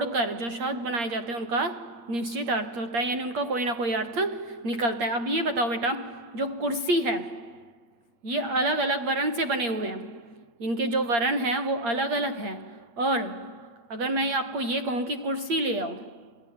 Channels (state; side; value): late; left; 8.5 ms